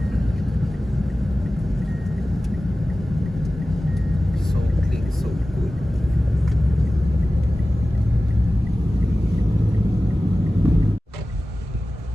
So clean, so good.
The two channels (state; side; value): normal; both; correlation 0.96